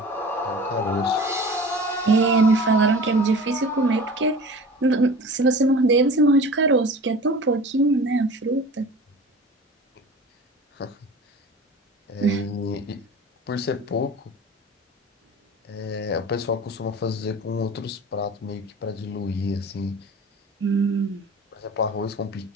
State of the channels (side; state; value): both; normal; correlation 0.39